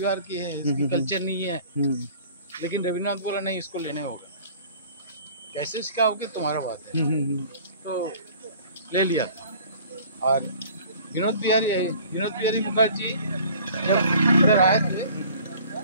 की है, इसकी कल्चर नहीं है। लेकिन रविन्द्रनाथ बोला नहीं, इसको लेने होगा। कैसे सिखाओगे तुम्हारा बात है। तो ले लिया। और विनोद बिहारी मुखर्जी जब इधर आए थे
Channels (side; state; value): both; inverted; correlation -0.49